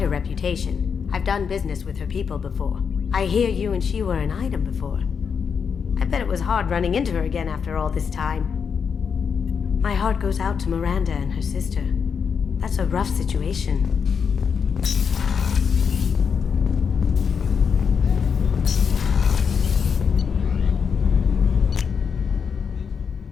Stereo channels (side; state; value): right; quieter; 6.4 dB